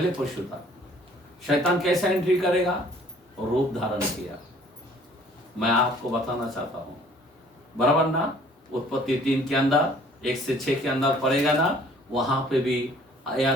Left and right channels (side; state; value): both; normal; correlation 0.56